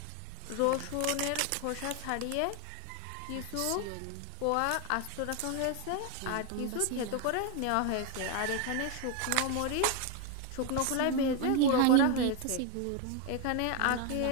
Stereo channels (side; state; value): both; different; correlation 0.01